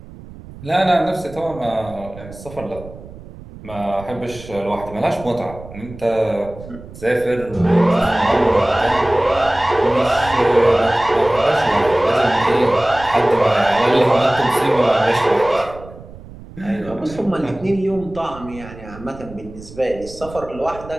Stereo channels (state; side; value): noise; right; rumble, 17 dB below the sound